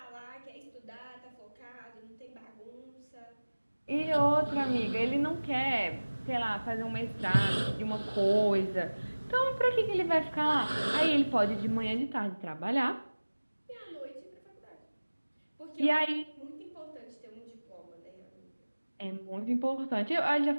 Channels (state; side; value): inverted; both; correlation -1.00